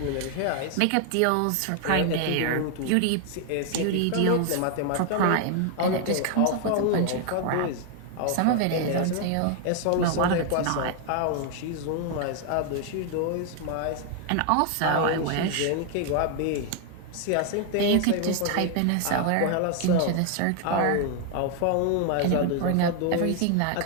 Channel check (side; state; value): both; different; correlation 0.00